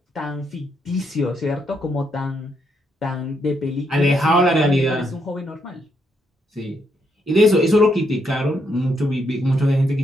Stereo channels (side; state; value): both; normal; correlation 0.77